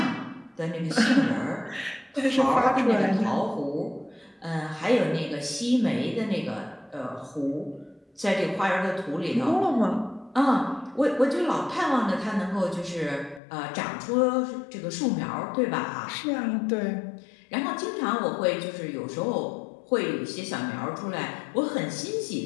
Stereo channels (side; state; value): right; drops out; at 13.4 s